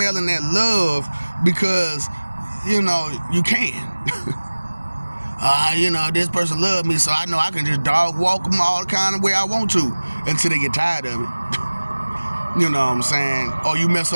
that love, because, you can. This person loves me, so I know I can just dog walk them all the kind of way I want to until they get tired of it. You know what I'm saying? Or you mess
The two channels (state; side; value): inverted; both; correlation -1.00